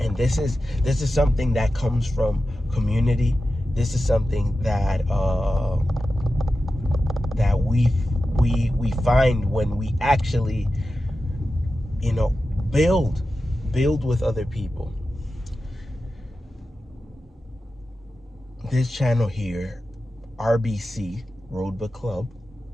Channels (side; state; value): both; normal; correlation 0.92